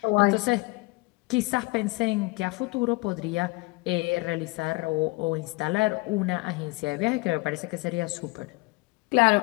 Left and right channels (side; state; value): right; quieter; 24.9 dB